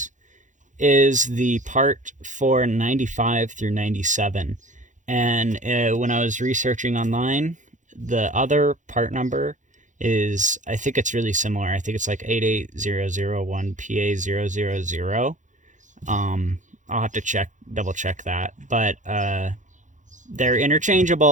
is the part for 95 through 97. And when I was researching online, the other part number is, I think it's really similar. I think it's like 88001PA000. I'll have to double check that. But they're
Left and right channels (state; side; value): late; left; 0.36 ms